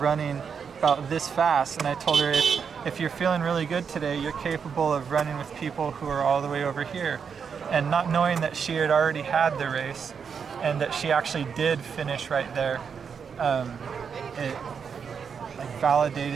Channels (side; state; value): left; quieter; 6.5 dB